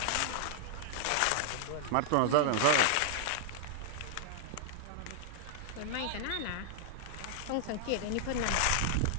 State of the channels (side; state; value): both; different; correlation -0.01